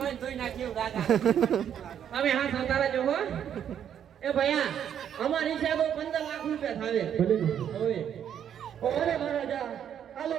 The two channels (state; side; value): quieter; left; 9.2 dB